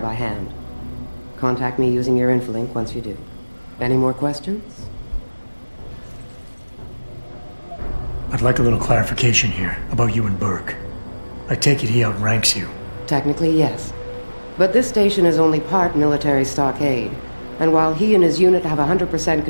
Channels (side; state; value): both; inverted; correlation -1.00